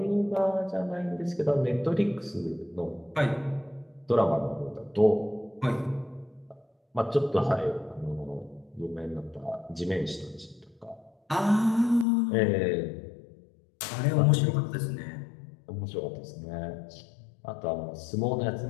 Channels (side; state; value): right; drops out; at 12.1 s